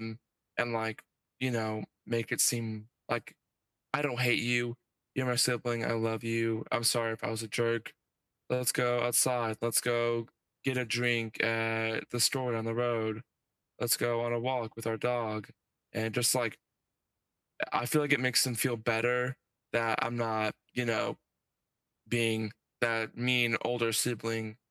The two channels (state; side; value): identical; both; correlation 1.00